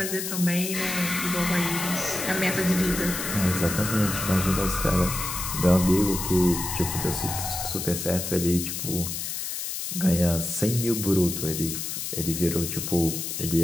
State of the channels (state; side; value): noise; left; hiss, 4 dB below the sound